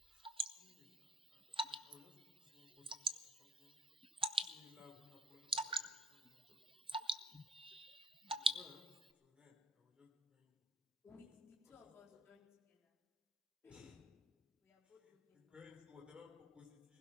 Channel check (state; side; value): normal; both; correlation 0.57